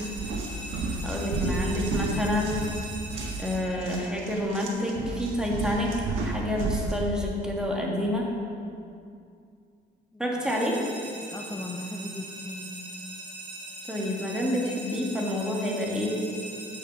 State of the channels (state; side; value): normal; both; correlation 0.56